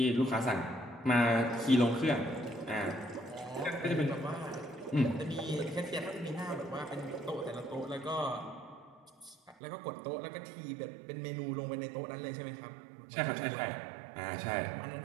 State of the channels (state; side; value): drops out; left; at 9.6 s